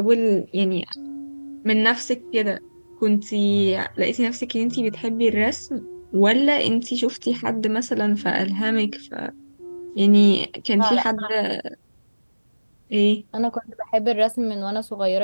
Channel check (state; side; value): inverted; both; correlation -1.00